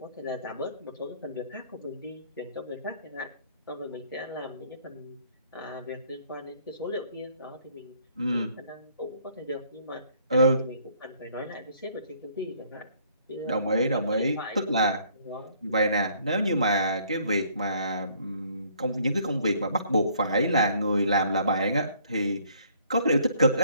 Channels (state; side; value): inverted; both; correlation -0.62